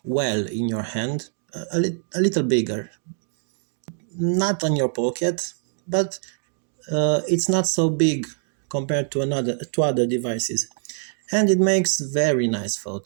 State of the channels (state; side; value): silent; left; digital silence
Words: well in your hand, a little bigger, not on your pocket, but it's not so big compared to other devices, and it makes very nice